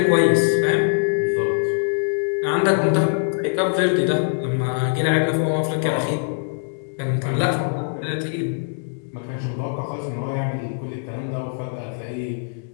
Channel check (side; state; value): right; silent; digital silence